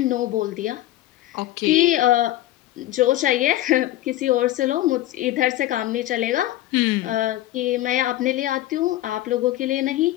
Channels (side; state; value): right; quieter; 15.0 dB